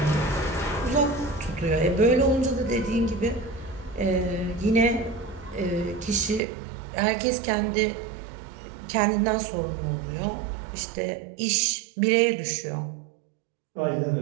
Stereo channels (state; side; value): drops out; left; at 6.4 s